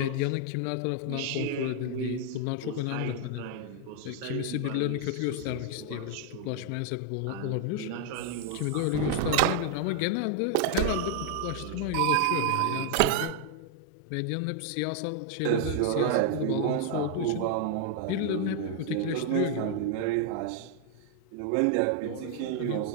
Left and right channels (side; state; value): both; different; correlation 0.00